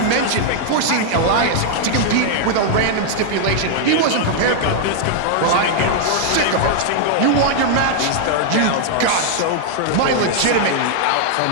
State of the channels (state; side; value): different; both; correlation -0.01